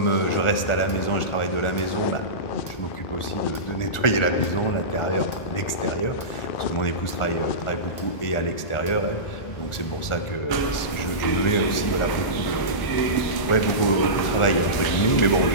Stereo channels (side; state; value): right; late; 1.4 ms